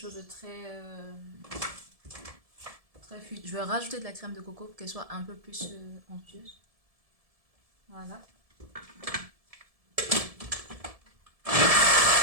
de très fluide. Je vais rajouter de la crème de coco pour qu'elle soit un peu plus onctueuse. Voilà.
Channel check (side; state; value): left; late; 1.7 ms